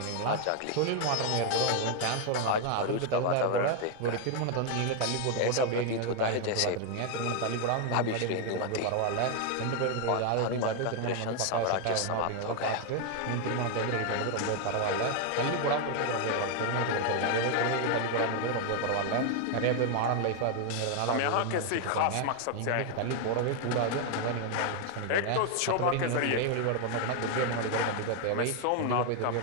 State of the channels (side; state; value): both; different; correlation 0.01